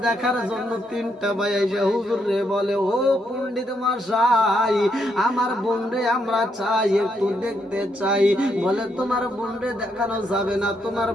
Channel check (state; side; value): normal; both; correlation 0.77